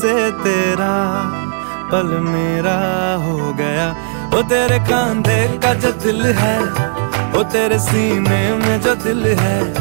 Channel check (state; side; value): silent; left; digital silence